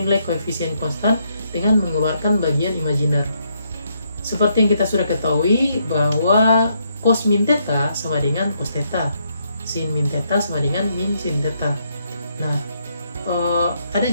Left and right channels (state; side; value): inverted; both; correlation -0.75